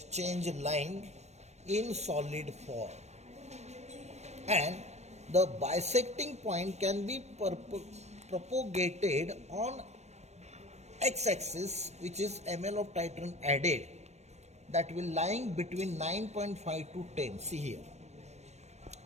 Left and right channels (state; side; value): late; left; 0.32 ms